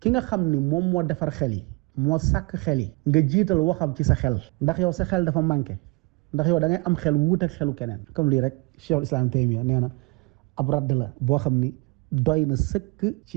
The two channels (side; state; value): left; quieter; 26.1 dB